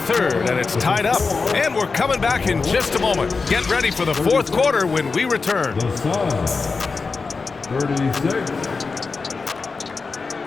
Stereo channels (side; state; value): right; quieter; 4.4 dB